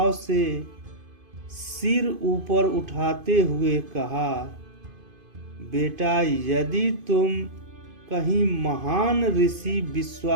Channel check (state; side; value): late; left; 2.5 ms